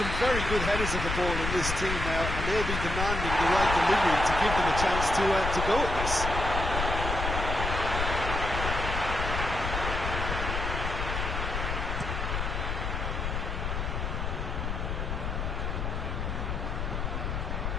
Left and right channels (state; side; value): noise; left; rumble, 2 dB below the sound